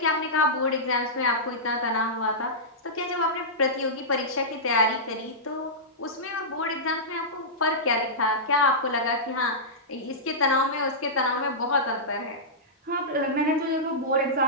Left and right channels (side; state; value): both; normal; correlation -0.14